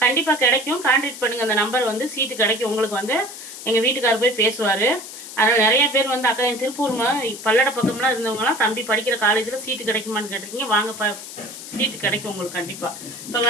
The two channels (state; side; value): noise; left; hiss, 12 dB below the sound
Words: கண்டிப்பாக கிடைக்கும். கான்டாக்ட் பண்ணுங்கள், அந்த நம்பர் வந்து சீட்டு கிடைக்கும். உங்களுக்கு வந்து எங்கள் வீட்டுக்காரர் போய் பேசுவார். அதனால் நிறைய பேர் வந்து அக்கா என் திருப்பூர் பல்லட பக்கம்லாம் இருந்தவங்களாம் தம்பி படிக்கிற காலேஜில் சீட்டு கிடைக்குமான்னு கேட்டிருக்கீங்க. வாங்க சீட்டு கிடைக்கும் உங்களுக்கு கண்டிப்பாக. இப்போ